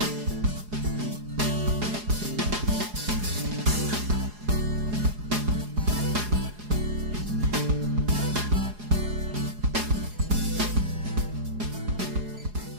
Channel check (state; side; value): late; left; 4.8 ms